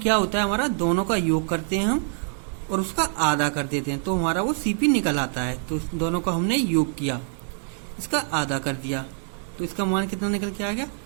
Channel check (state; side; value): silent; left; 62 dB below the other